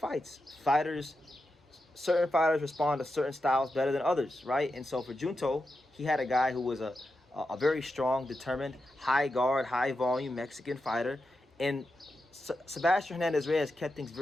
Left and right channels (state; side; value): normal; both; correlation 0.88